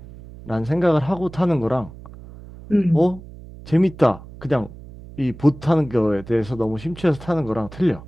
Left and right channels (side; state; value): right; noise; hum, 17 dB below the sound